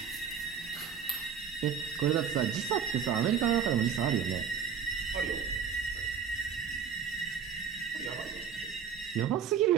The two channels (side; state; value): left; quieter; 7.3 dB